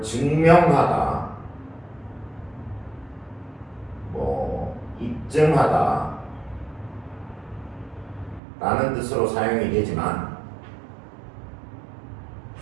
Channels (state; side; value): drops out; left; at 8.4 s